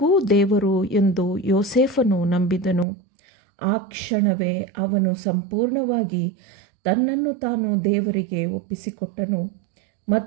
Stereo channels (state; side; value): drops out; left; at 2.9 s